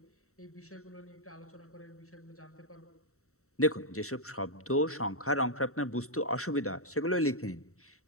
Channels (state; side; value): late; right; 0.64 ms